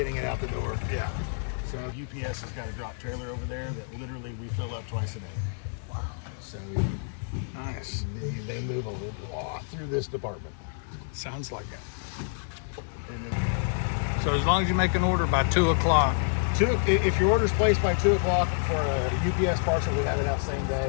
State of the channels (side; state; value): right; silent; 59 dB below the other